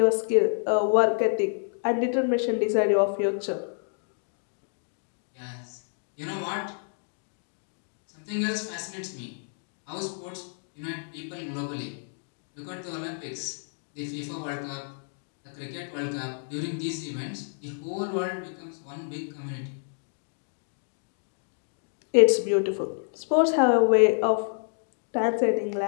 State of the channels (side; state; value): right; silent; digital silence